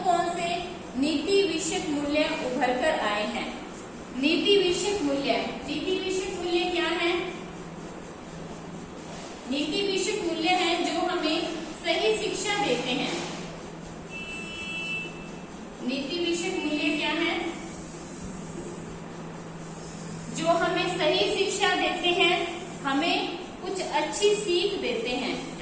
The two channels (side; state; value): both; identical; correlation 1.00